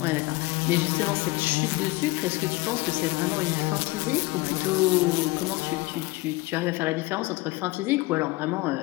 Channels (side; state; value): right; quieter; 22.4 dB